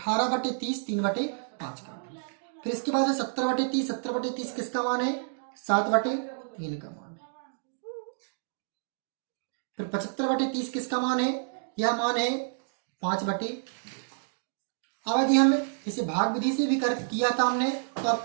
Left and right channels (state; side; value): silent; left; digital silence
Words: 3/5 का। फिर इसके बाद है 70/30। 70/30 किसका मान है? 7/3 का मान है। फिर 75/30 किसका मान है? यह मान है 5/। अब यदि हम इसे भाग विधि से भी किया था हमने, तो